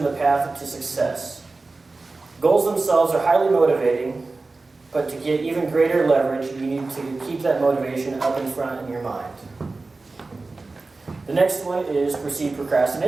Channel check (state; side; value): quieter; left; 3.6 dB